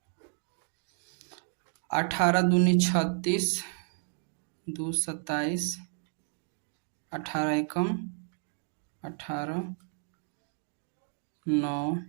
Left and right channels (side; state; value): left; silent; 57 dB below the other